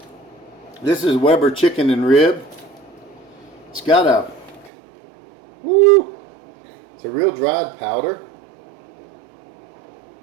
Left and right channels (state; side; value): drops out; left; at 4.7 s